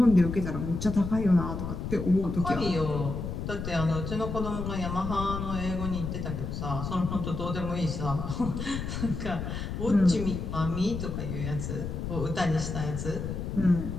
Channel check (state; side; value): noise; left; rumble, 5 dB below the sound